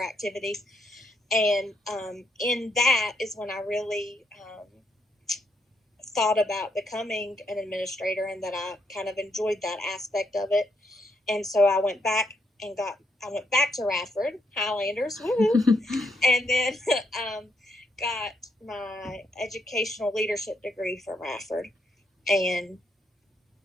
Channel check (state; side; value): normal; both; correlation 0.76